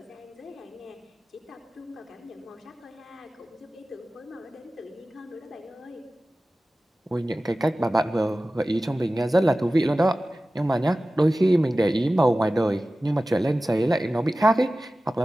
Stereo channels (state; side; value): normal; both; correlation 0.96